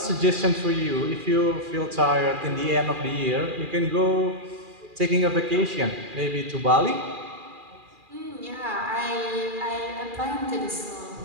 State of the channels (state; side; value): late; left; 2.4 ms